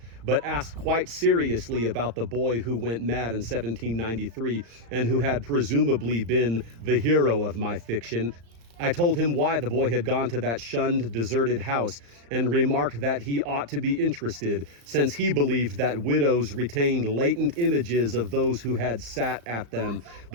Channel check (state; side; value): late; left; 35 ms